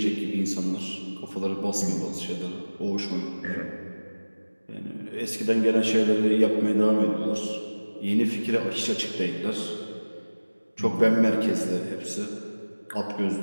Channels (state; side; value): inverted; both; correlation -1.00